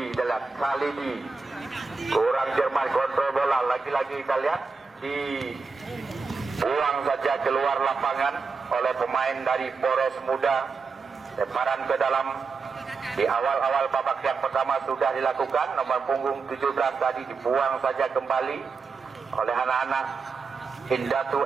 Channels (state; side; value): quieter; left; 4.7 dB